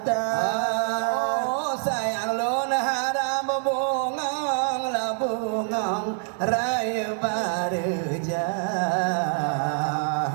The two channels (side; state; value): left; silent; 61 dB below the other